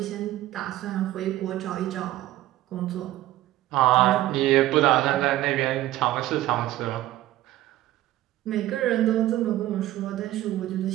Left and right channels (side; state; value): left; quieter; 15.1 dB